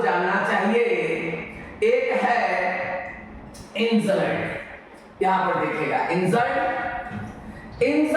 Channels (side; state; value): both; identical; correlation 1.00